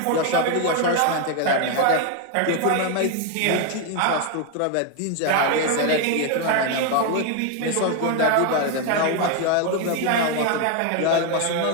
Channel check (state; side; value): different; both; correlation 0.01